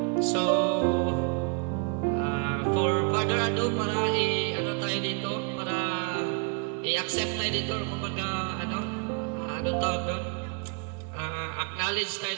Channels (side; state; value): left; quieter; 36.7 dB